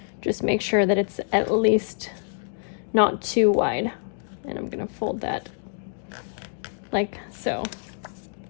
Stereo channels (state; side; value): silent; right; digital silence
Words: Just make sure that it's at least not too wide. And I'm going to fold that like so.